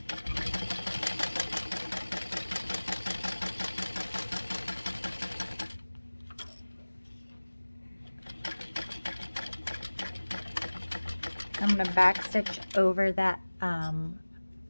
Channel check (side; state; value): both; inverted; correlation -1.00